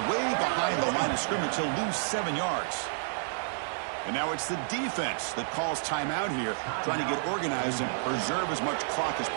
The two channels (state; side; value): silent; left; 58 dB below the other